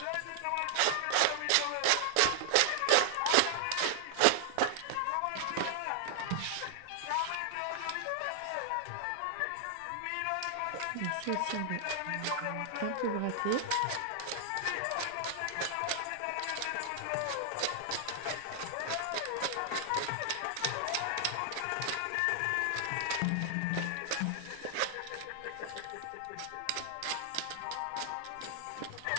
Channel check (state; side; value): different; both; correlation 0.00